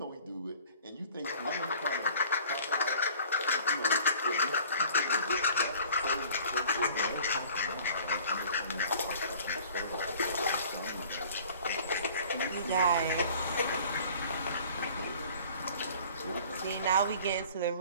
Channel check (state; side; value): inverted; both; correlation -0.49